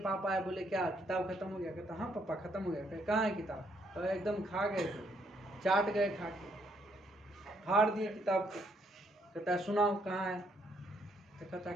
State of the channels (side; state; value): both; normal; correlation 0.72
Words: आए, बोले क्या किताब खत्म हो गया? कहता हाँ पापा खत्म हो गया। कहाँ है किताब? तो एकदम खा गए थे, चाट गए खा के, फाड़ दिए किताब को। कहता है सुनाओ कहाँ है? तो कहता